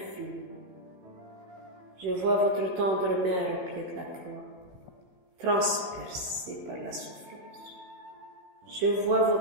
Je vois votre tendre mère au pied de la croix, transpercée par la souffrance. Je vois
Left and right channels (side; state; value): left; late; 16 ms